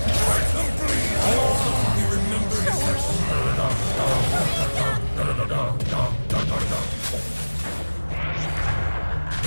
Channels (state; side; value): inverted; both; correlation -1.00